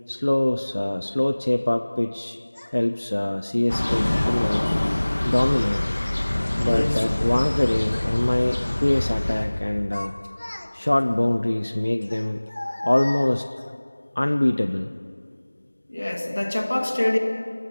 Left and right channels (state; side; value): inverted; both; correlation -1.00